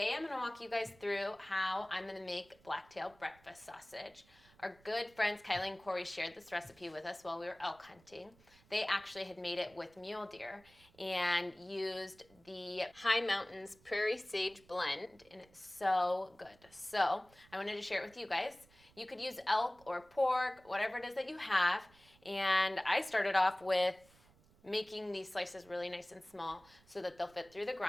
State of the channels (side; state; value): right; noise; rumble, 28 dB below the sound